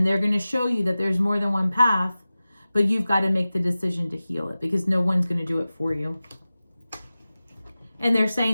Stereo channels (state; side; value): inverted; both; correlation -0.96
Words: they're going to show you that there's more than one path, but you've got to make the decision to heal it, because no one's going to do it for you. And they're